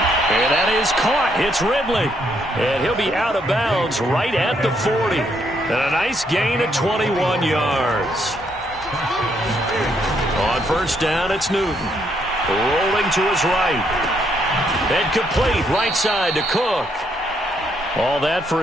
And that is caught. It's Ridley. And he'll be out of bounds right at the 40. And a nice gain of 21 yards. On first down, it's Newton. Rolling to his right. And complete right side to Cook. All that for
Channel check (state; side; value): normal; both; correlation 0.73